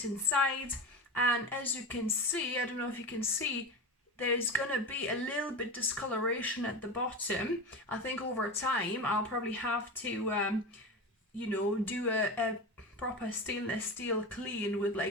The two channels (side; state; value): both; normal; correlation 0.24